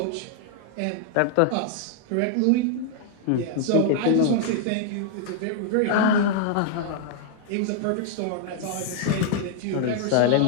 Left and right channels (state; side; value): different; both; correlation -0.01